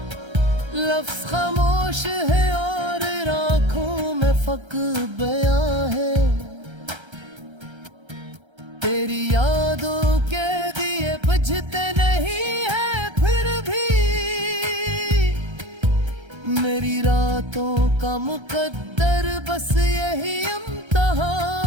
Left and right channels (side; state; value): left; late; 1.3 ms